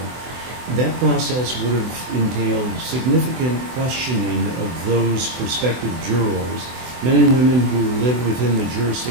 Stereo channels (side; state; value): left; late; 24 ms